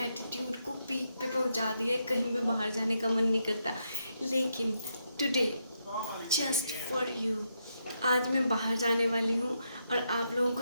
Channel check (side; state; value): both; inverted; correlation -0.81